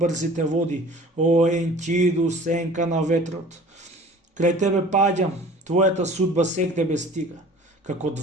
води. О, Енкиду, сенка на ветрот. Крај тебе паѓам, твојата судба сегде ме стига. Како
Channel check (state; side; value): normal; both; correlation 0.47